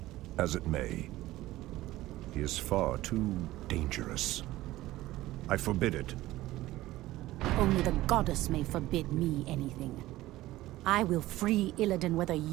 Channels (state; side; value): quieter; left; 16.6 dB